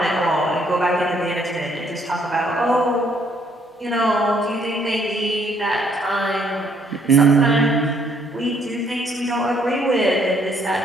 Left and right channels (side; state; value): both; normal; correlation 0.67